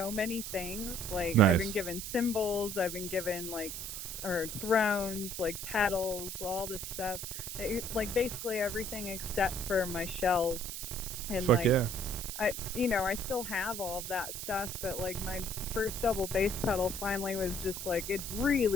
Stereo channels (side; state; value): right; noise; hiss, 6 dB below the sound